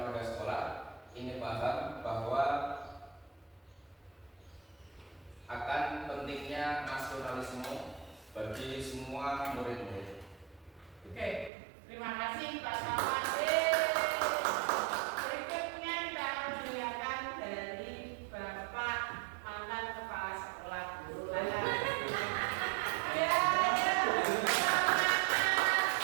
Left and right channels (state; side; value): drops out; left; at 11.5 s